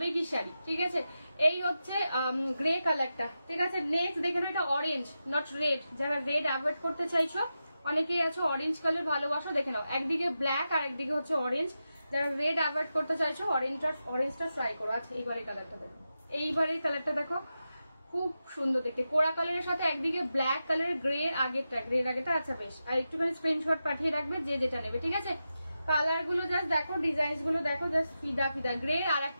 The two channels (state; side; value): inverted; both; correlation -0.90